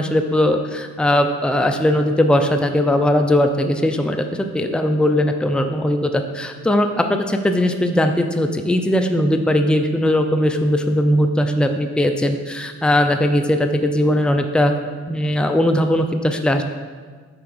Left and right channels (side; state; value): both; normal; correlation 0.78